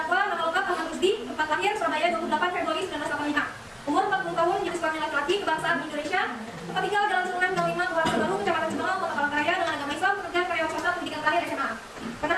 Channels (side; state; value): both; identical; correlation 1.00